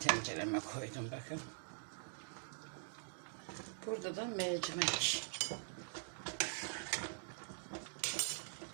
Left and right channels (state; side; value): silent; left; digital silence